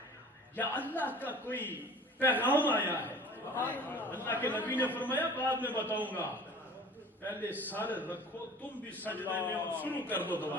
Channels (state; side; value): normal; both; correlation 0.44